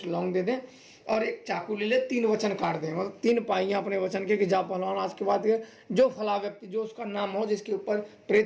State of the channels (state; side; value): identical; both; correlation 1.00